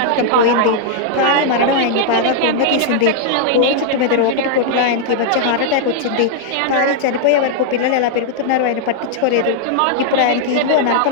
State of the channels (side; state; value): both; different; correlation -0.01